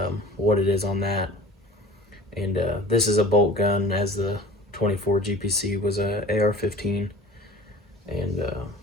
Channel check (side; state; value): both; normal; correlation 0.42